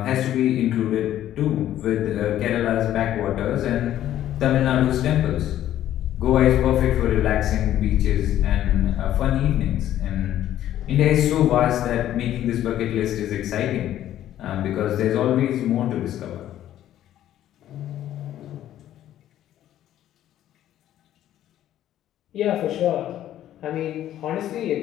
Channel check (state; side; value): quieter; right; 12.2 dB